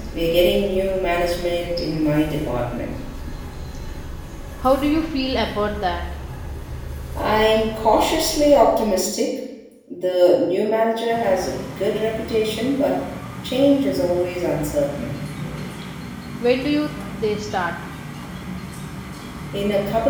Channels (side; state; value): both; identical; correlation 1.00